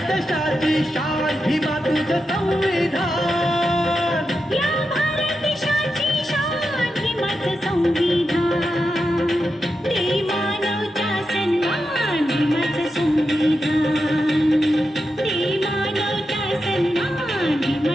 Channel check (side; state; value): both; normal; correlation 0.88